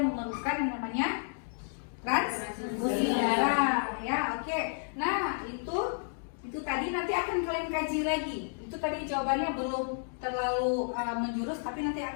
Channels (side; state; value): right; silent; digital silence